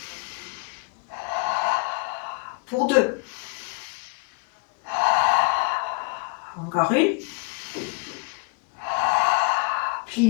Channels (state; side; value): quieter; right; 29.7 dB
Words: Pour 2. Encore une. Plie